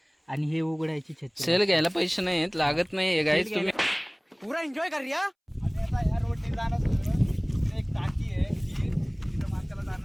आणि हे उघडायची छत्री. सेल घ्यायला पैसे नाहीत, लागत नाही गाईज. तुम्ही पुरा एन्जॉय कर या. आणि आता ह्या रोडने जाणार होतो. एक टाकी आहे जी तिथं माणसाला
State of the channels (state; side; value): identical; both; correlation 1.00